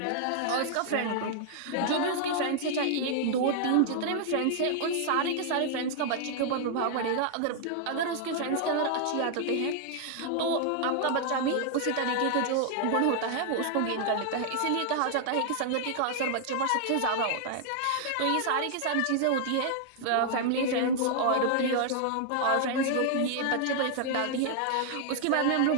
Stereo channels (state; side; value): different; both; correlation -0.01